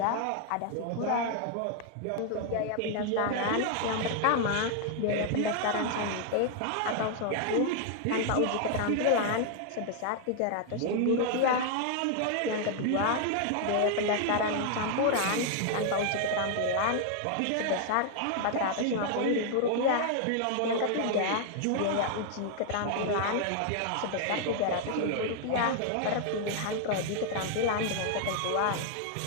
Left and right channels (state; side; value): different; both; correlation 0.00